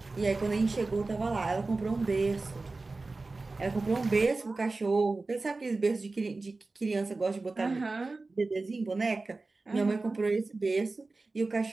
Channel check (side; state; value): left; quieter; 3.5 dB